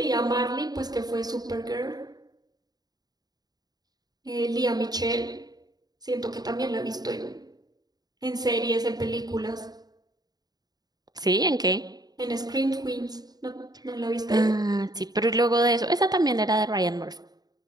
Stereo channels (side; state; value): left; late; 0.19 ms